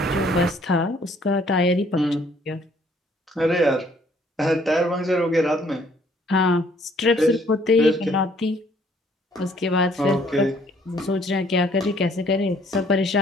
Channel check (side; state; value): both; normal; correlation 0.62